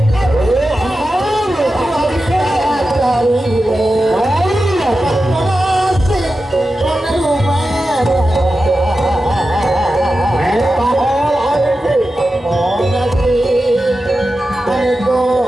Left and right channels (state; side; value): normal; both; correlation 0.92